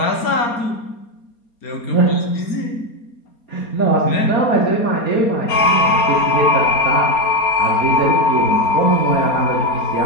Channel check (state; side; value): late; right; 4.3 ms